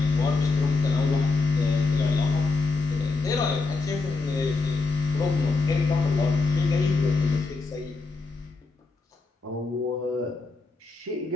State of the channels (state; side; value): quieter; right; 3.9 dB